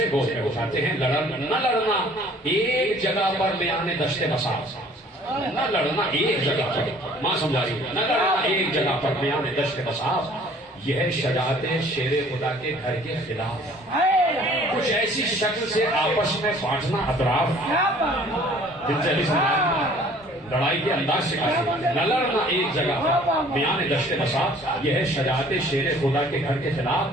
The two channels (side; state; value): both; normal; correlation 0.54